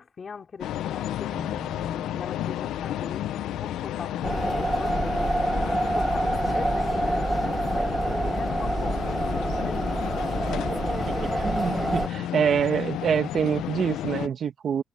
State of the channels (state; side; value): normal; both; correlation 0.79